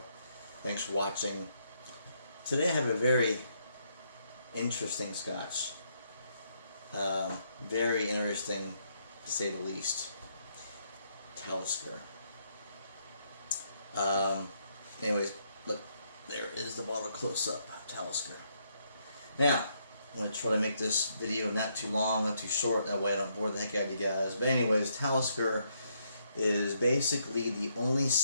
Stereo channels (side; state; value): both; inverted; correlation -0.75